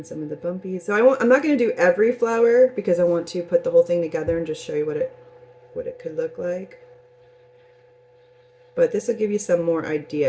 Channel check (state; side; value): identical; both; correlation 1.00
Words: some of the bumpies. So I'm not going to do every flower because I want to put the whole thing together and just show you what it could look like. But this will give you some more